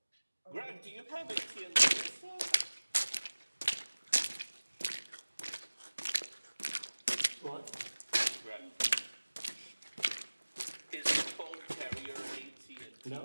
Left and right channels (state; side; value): inverted; both; correlation -1.00